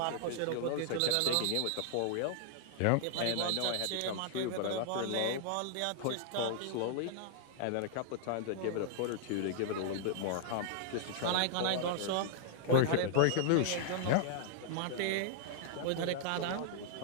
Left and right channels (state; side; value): different; both; correlation -0.01